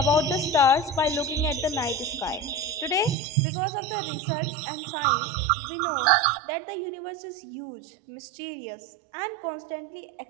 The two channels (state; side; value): drops out; left; at 3.2 s